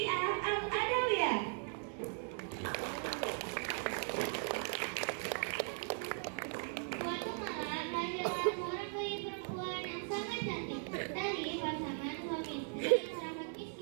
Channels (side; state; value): left; silent; 52 dB below the other